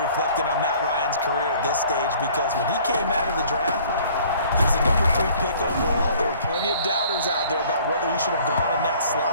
reflecting on Matt Ryan's career at this stage because when he came out of the draft, he was the number 3 pick overall. There were plenty of doubters out there about whether he should have gone in that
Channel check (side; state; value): both; inverted; correlation -0.54